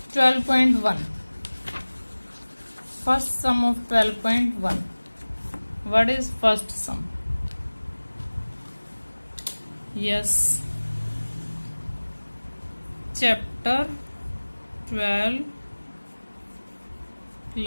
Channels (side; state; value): both; inverted; correlation -1.00